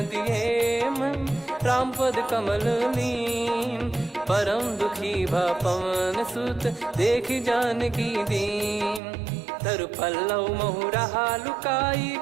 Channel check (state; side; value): drops out; left; at 9.0 s